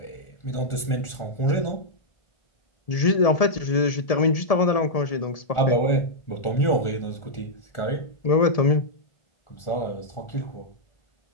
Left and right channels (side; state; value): right; late; 1.7 ms